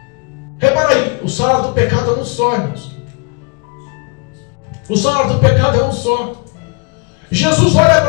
Repara aí, o salário do pecado é um só, irmãos. O salário do pecado é um só. Jesus olha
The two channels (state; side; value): quieter; right; 32.8 dB